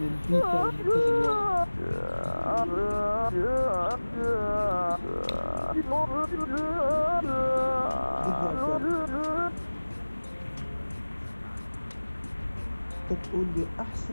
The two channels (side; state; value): both; inverted; correlation -1.00